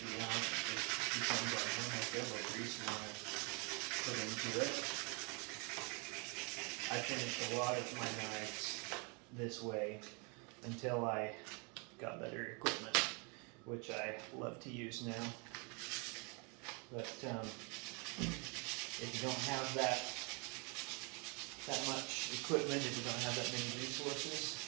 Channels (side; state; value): left; quieter; 33.0 dB